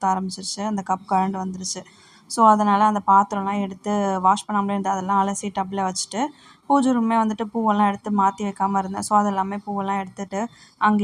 ஆரம்பிச்சிருச்சு. அந்த கப் கழண்டு வந்துருச்சு. ஸோ அதனால் அந்த பாத்திரம்லாம் எடுத்து வாஷ் பண்ணாமலே இருந்து அதெல்லாம் அலசி டப்பில் வச்சுட்டு, பூஜை ரூமே வந்துட்டு பூவெல்லாம் எடுத்து மாற்றி வைக்காமல் இருந்தேன். ஸோ அதெல்லாமே பூவெல்லாம் எடுத்துகிட்டு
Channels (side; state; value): both; identical; correlation 1.00